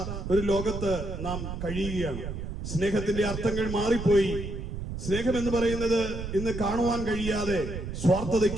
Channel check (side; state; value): right; noise; rumble, 6 dB below the sound